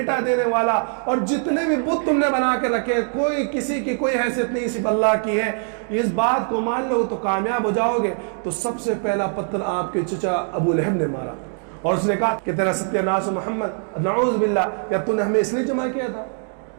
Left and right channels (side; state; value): left; silent; 56 dB below the other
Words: دینے والا, اور جتنے بھی بت تم نے بنا کے رکھے, کوئی کسی کی کوئی حیثیت نہیں, صرف اللہ کی ہے. اس بات کو مان لو تو کامیاب ہو جاؤ گے. تو سب سے پہلا پتھر آپ کے چچا ابو لہب نے مارا, اور اس نے کہا کہ تیرا ستیہ ناس محمد, نعوذ باللہ, یا تو نے ہمیں اس لیے جمع کیا تھا؟